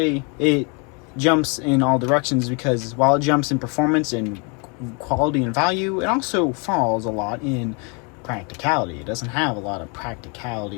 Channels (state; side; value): quieter; right; 33.7 dB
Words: it jumps in all directions because while it jumps in performance and quality and value, it also falls a lot in practicality. It doesn't have a lot of